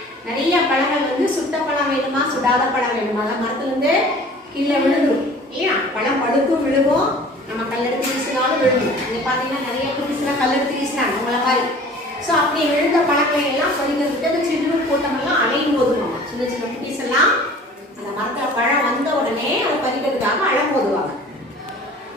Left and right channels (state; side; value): normal; both; correlation 0.47